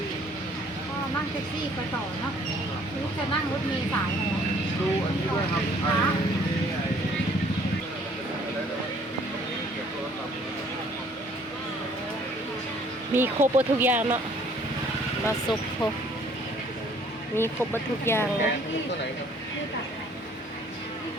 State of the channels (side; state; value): both; normal; correlation 0.59